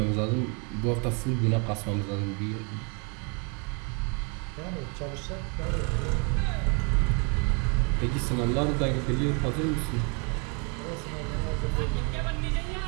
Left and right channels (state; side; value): quieter; left; 35.3 dB